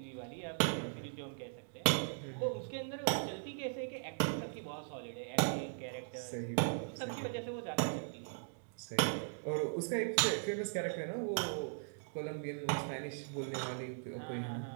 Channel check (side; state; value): left; silent; digital silence